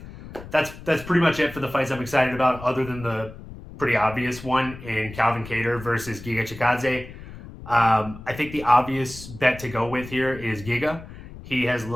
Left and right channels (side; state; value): left; noise; rumble, 15 dB below the sound